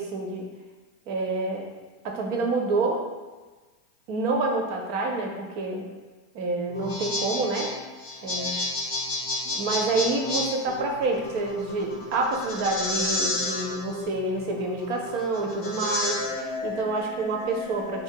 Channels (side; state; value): left; late; 4.4 ms